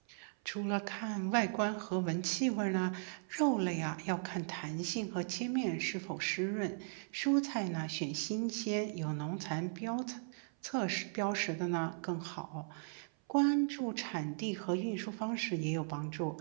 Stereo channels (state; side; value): silent; left; 53 dB below the other